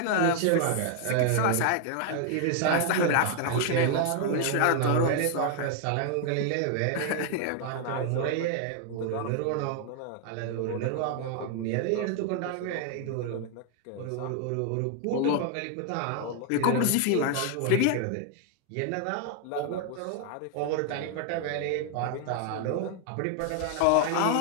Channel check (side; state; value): both; different; correlation 0.00